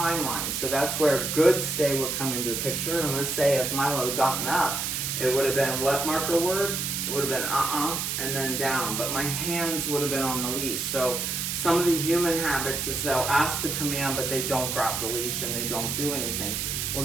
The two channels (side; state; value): right; noise; hiss, 2 dB below the sound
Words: So that's where good stay would come into the picture. And let's say if Milo had gotten up, it would have been what marker word? It would have been and then down. But my hands would have been on the leash. So some of the human habits is they'll ask the command, but they don't grab the leash and they don't do anything. Well,